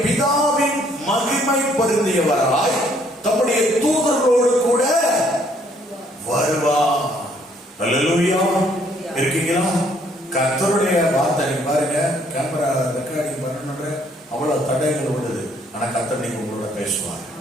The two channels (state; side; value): normal; both; correlation 0.65